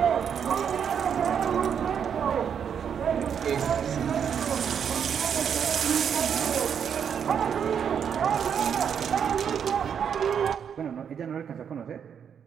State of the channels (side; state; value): left; quieter; 7.8 dB